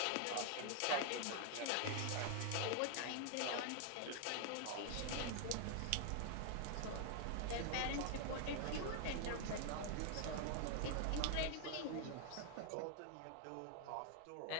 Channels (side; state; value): both; different; correlation 0.00